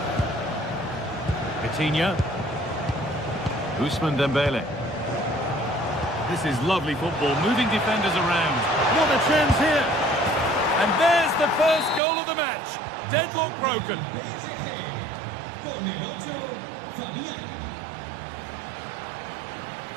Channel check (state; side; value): drops out; left; at 12.0 s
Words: Vitinha. Ousmane Dembele. This is lovely football, moving defenders around. What a chance here! And there's the first goal of the match. Deadlock broken.